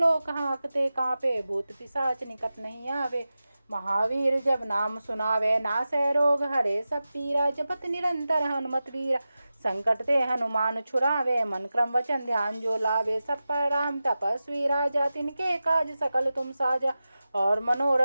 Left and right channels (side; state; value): both; inverted; correlation -0.94